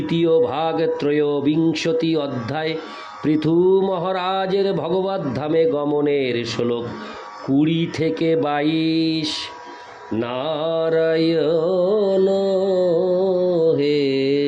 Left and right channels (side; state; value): both; identical; correlation 1.00